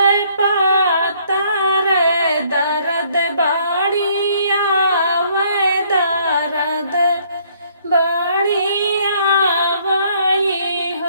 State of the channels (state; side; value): inverted; both; correlation -0.64